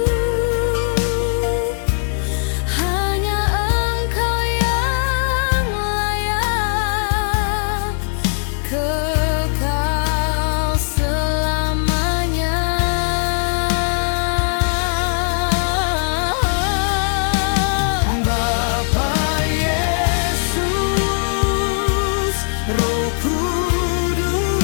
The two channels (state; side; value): silent; right; digital silence